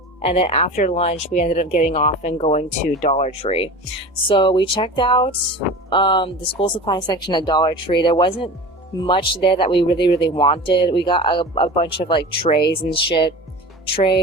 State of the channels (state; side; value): normal; both; correlation 0.34